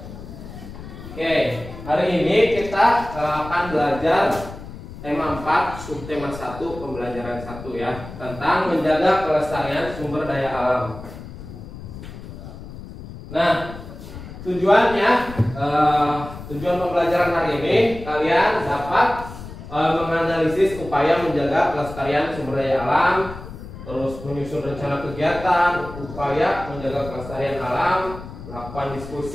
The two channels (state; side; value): noise; left; rumble, 13 dB below the sound